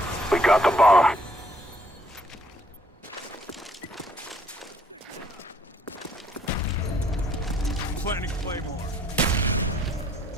We got the bomb. Planning Claymore.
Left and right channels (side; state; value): both; normal; correlation 0.64